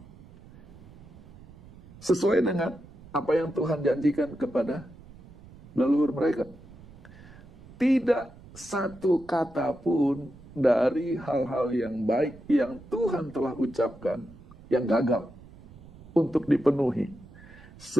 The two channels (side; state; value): right; noise; rumble, 20 dB below the sound